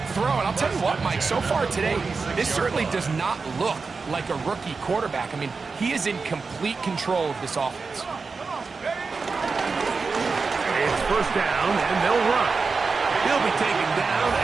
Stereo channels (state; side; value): quieter; left; 4.5 dB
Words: throw. And I'll tell you what, Mike, so far today, this certainly does not look like a rookie quarterback. I mean, he is in complete control of this offense. It's first down, and they'll run. He'll be taken down